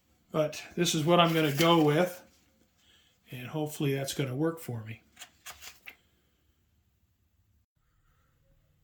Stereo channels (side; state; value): both; identical; correlation 1.00